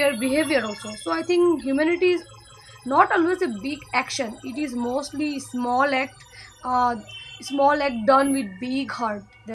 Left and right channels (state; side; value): identical; both; correlation 1.00